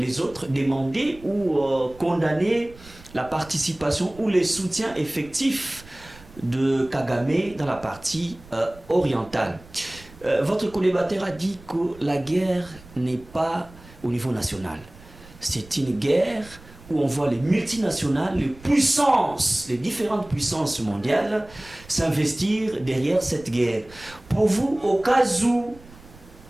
autres demander ou condamner la participation ou les soutiens effectifs de Kagame dans la partie orientale. Votre collimateur a dit que la guerre n'est pas au niveau national. C'est une guerre où on voit les multinationales, les puissances, les différentes puissances mondiales s'investir derrière cette guerre. Pour vous, au cas où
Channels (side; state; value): right; noise; rumble, 22 dB below the sound